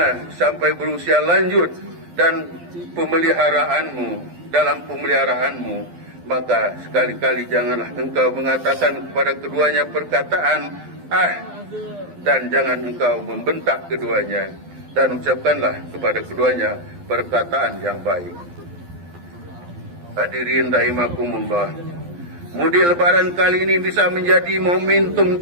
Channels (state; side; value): late; left; 12 ms